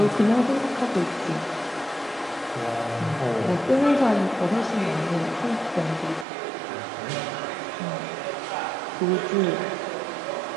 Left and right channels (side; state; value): left; drops out; at 6.2 s